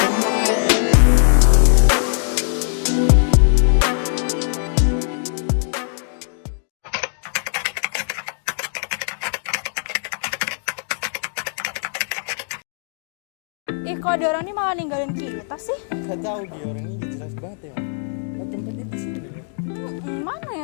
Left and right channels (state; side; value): silent; right; 62 dB below the other